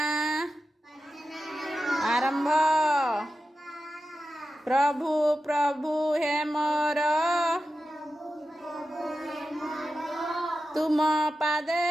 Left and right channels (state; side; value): normal; both; correlation 0.92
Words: आरंभ। प्रभु प्रभु हे मोर तुम पादे